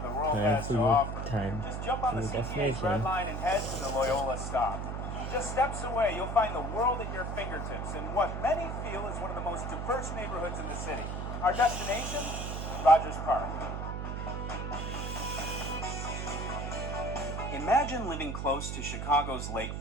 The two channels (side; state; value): right; noise; hum, 4 dB below the sound